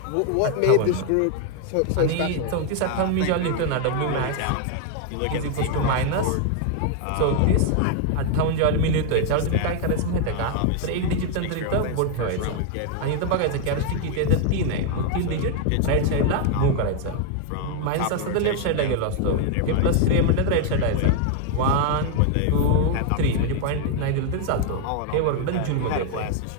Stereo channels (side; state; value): both; different; correlation 0.00